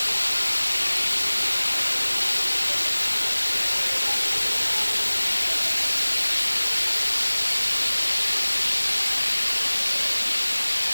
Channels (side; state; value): both; inverted; correlation -1.00